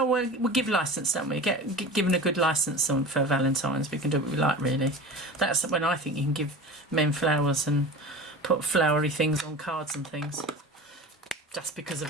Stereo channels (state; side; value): normal; both; correlation 0.34